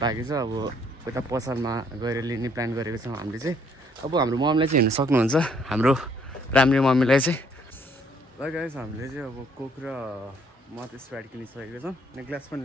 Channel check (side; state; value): both; normal; correlation 0.65